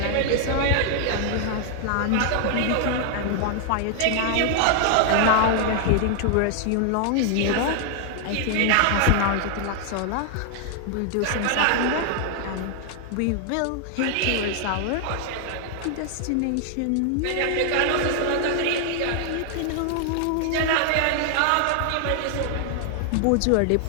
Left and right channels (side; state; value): both; different; correlation 0.00